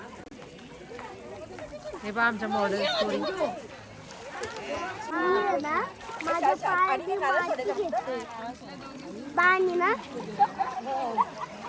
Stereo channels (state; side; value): identical; both; correlation 1.00